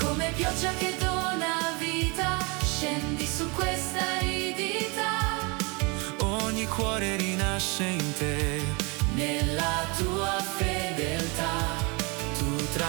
Pioggia che dona vita, scendi su questa aridità. Ogni cuore rinasce in te, nella tua fedeltà. Tu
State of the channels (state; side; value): quieter; left; 29.5 dB